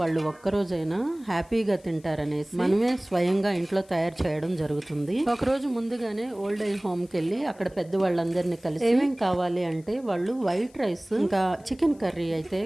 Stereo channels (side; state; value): left; noise; hiss, 29 dB below the sound